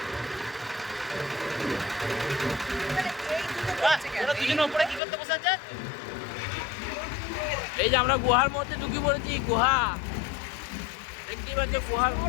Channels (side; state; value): right; drops out; at 5.0 s